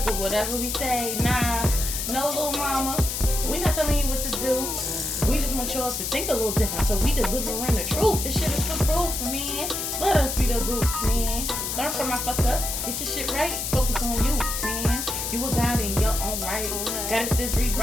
with whatever we say. Nah, no little mama. We not telling you what to do. We just want y'all to think a little different, so we delivering the truth. This shit is for proof, man. Let us be the goofs, man. Learn from my fuck ups. Get your shit right. Focus on you, man. You a god in your own right. Goddesses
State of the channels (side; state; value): left; noise; hiss, 3 dB below the sound